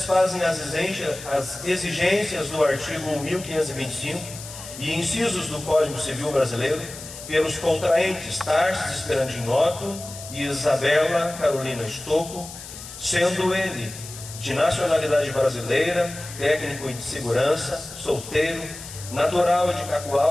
as exigências do artigo 1525 e incisos do Código Civil Brasileiro, pelos contraentes Tarsis Esperandim Otto e Isabela Carolina Estocco, sendo ele de nacionalidade brasileira, técnico de segurança, solteiro, natural de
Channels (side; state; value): left; noise; hiss, 13 dB below the sound